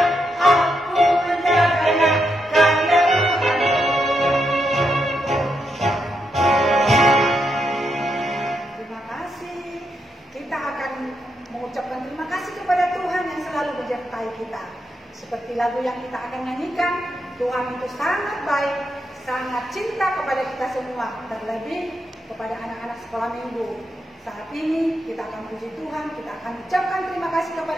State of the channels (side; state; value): both; normal; correlation 0.82